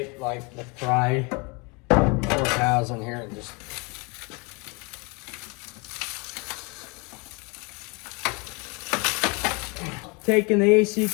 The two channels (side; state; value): right; quieter; 30.2 dB